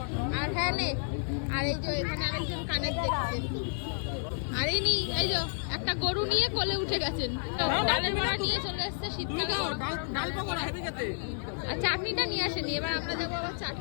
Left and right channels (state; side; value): silent; right; digital silence